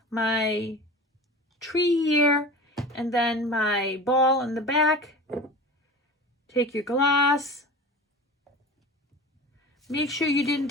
my tree here, and then my ball in the back. Take your glass. Make sure you didn't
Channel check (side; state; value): both; normal; correlation 0.35